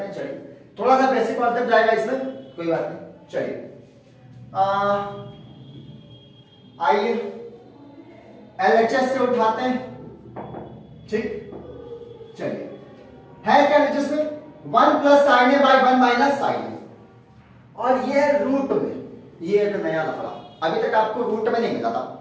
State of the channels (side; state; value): both; identical; correlation 1.00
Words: हैं। चलिए थोड़ा सा बेसिक कॉन्सेप्ट जाएगा इसमें, कोई बात नहीं। चलिए आइए LHS से उठाते हैं, ठीक? चलिए है क्या LHS में 1 plus sine A by 1 minus sine A, और ये है रूट में, ये एक नया लफड़ा। अभी तक आपको रूट में नहीं मिला था